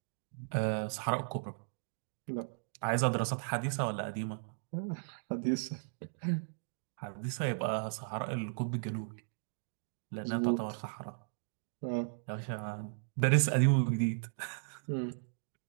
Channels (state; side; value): silent; left; digital silence